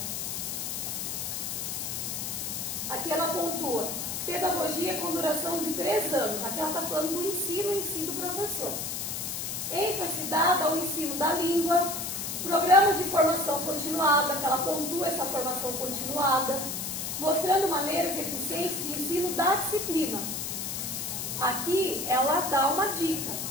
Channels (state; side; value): noise; left; hiss, 4 dB below the sound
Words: Aqui ela pontua, pedagogia com duração de 3 anos. Aqui ela está falando do ensino em si do professor. ênfase dada ao ensino da língua, programas de formação continuada, que ela pontua essa formação continuada, mostrando maneiras eficientes de ensino da disciplina. Aqui ela dá uma dica,